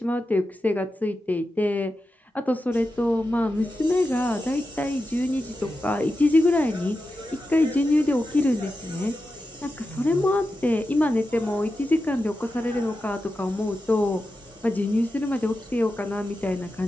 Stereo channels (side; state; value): both; normal; correlation 0.90